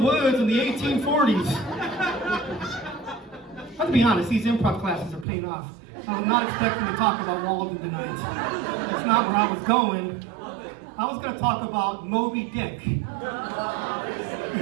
in the 1840s. Let's be honest, these improv classes are paying off. I'm not expecting to talk about Walden tonight. That's not where I was going. I was going to talk about Moby Dick.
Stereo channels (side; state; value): left; drops out; at 5.2 s